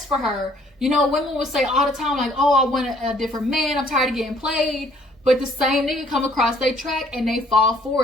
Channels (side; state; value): both; normal; correlation 0.61